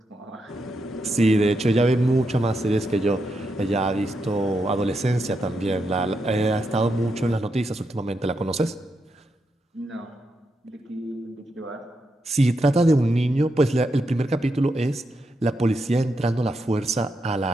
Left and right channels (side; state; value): both; normal; correlation 0.84